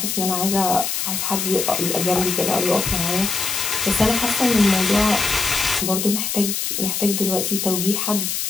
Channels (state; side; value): noise; left; hiss, 2 dB below the sound